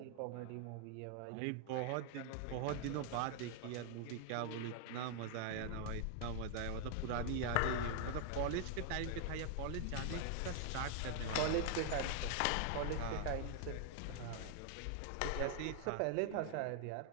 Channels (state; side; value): different; both; correlation 0.00